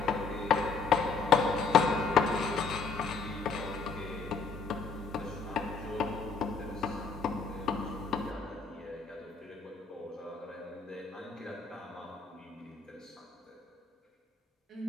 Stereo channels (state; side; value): quieter; right; 4.8 dB